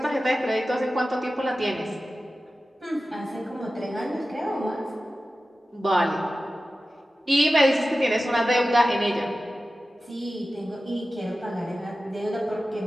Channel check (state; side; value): normal; both; correlation 0.95